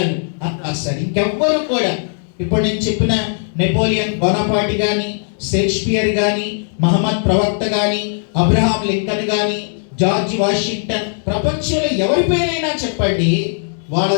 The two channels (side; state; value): right; silent; digital silence